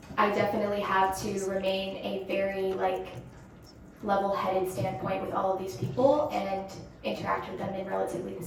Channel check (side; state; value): both; identical; correlation 1.00